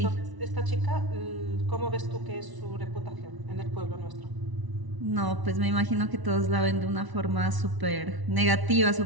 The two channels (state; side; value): late; left; 1.0 ms